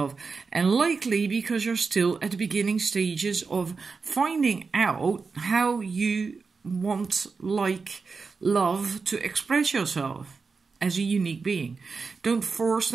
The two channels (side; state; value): left; quieter; 4.8 dB